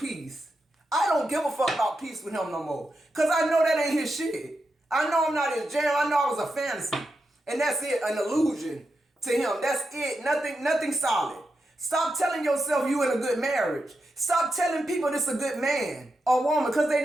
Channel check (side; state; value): both; normal; correlation 0.87